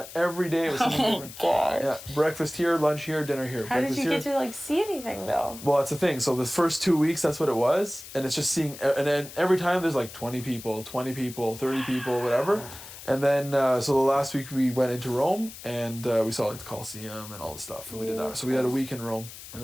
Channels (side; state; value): left; noise; hiss, 14 dB below the sound